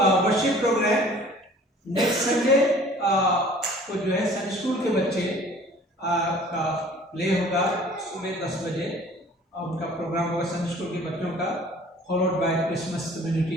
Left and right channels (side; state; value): both; normal; correlation 0.50